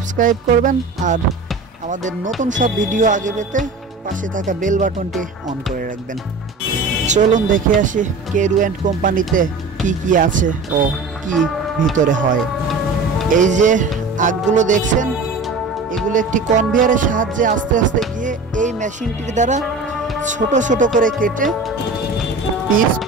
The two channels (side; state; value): left; quieter; 3.5 dB